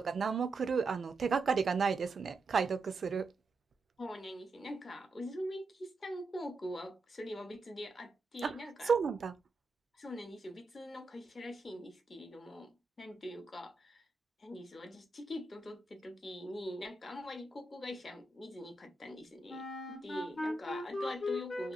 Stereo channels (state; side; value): quieter; left; 3.3 dB